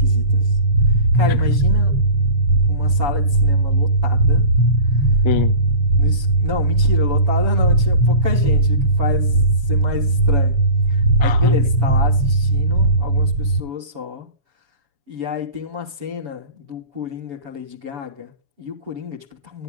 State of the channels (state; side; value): late; left; 7.1 ms